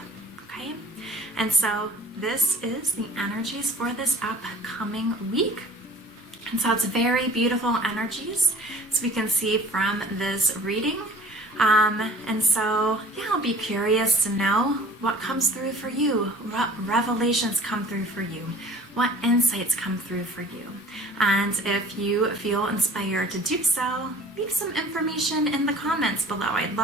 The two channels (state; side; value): normal; both; correlation 0.47